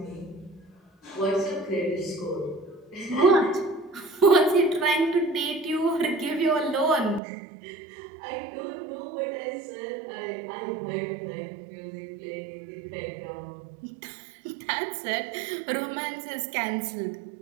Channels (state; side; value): drops out; left; at 7.2 s